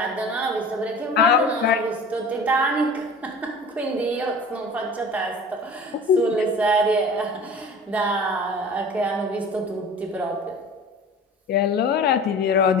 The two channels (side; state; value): both; normal; correlation 0.40